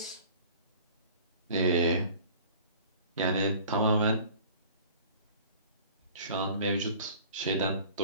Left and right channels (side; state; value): both; inverted; correlation -0.47